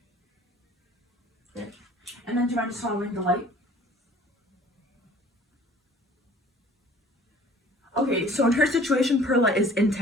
then do you mind just following the light? Okay, so in her situation, Perla is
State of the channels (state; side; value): normal; both; correlation 0.51